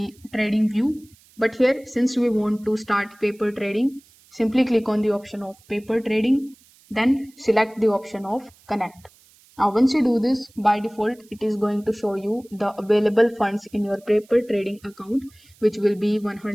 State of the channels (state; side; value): noise; right; hiss, 29 dB below the sound